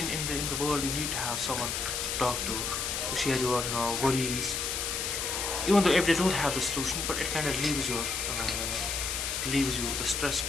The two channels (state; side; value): noise; left; hiss, 1 dB below the sound